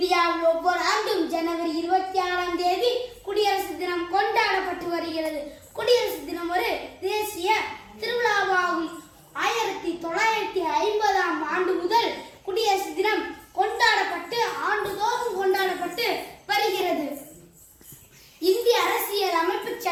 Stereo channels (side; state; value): both; identical; correlation 1.00